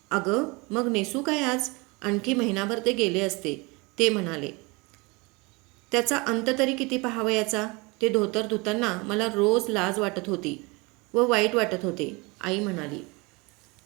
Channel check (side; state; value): left; quieter; 26.5 dB